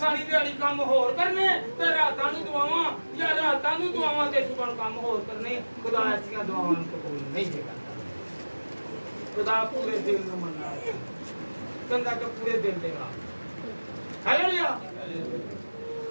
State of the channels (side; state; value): both; inverted; correlation -1.00